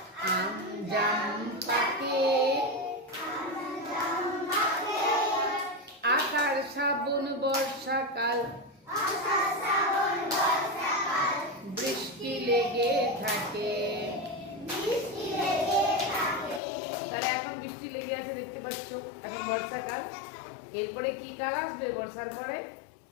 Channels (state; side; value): drops out; right; at 16.6 s